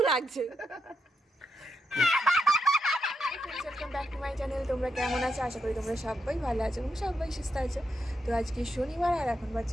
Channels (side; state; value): both; normal; correlation 0.83